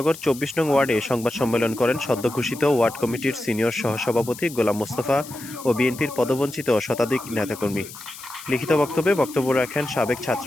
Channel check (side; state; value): left; noise; hiss, 15 dB below the sound